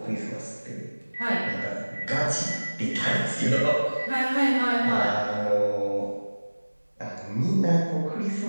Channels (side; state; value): both; inverted; correlation -1.00